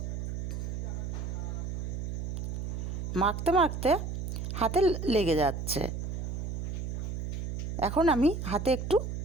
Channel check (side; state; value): right; noise; hum, 3 dB below the sound